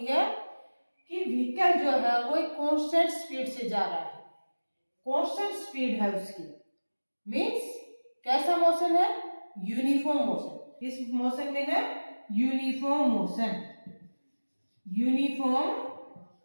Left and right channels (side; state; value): both; inverted; correlation -1.00